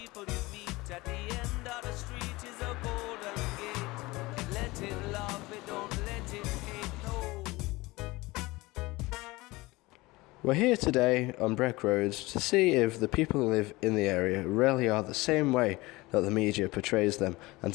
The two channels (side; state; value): right; quieter; 21.4 dB